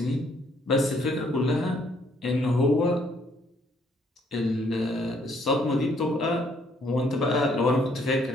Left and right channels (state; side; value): normal; both; correlation 0.66